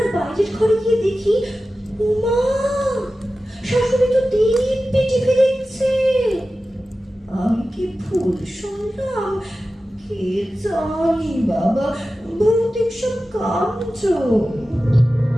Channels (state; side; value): normal; both; correlation 0.94